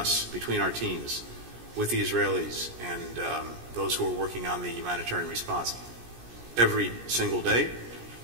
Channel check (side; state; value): left; late; 17 ms